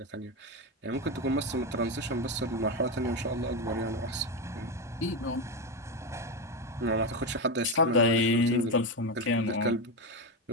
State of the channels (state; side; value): normal; both; correlation 0.12